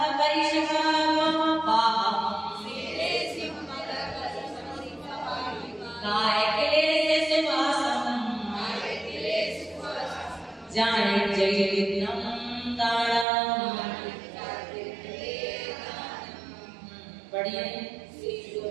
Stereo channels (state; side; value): drops out; left; at 13.2 s